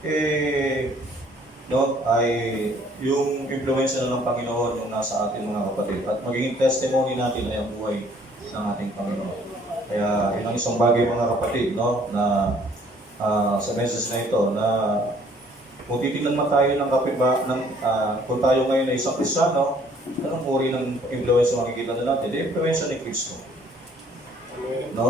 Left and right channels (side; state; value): both; normal; correlation 0.59